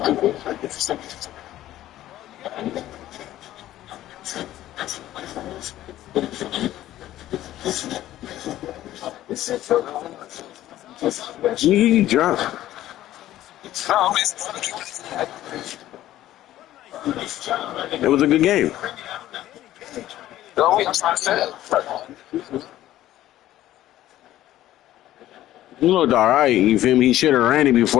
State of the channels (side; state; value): right; quieter; 13.9 dB